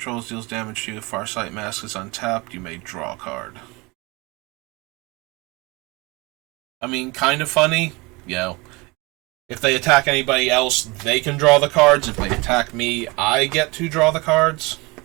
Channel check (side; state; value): left; quieter; 25.3 dB